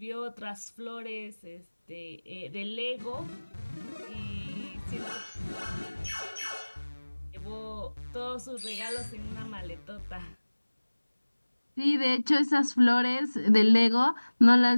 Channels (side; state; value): both; inverted; correlation -1.00